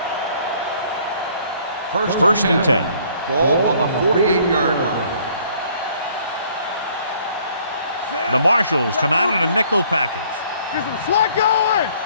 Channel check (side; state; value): both; inverted; correlation -0.60